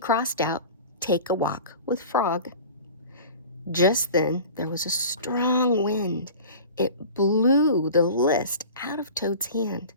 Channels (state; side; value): inverted; both; correlation -0.38